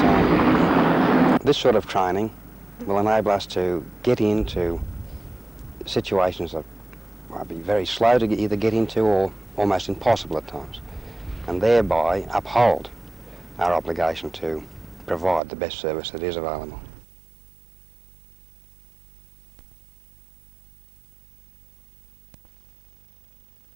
this sort of training will enable us to get into situations that might be very slow to either get into or almost impossible at times, and thereby uphold our obligation to provide the best service that is available.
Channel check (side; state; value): left; drops out; at 15.4 s